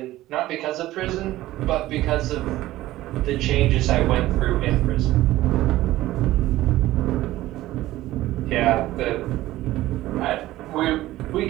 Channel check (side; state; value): left; quieter; 15.9 dB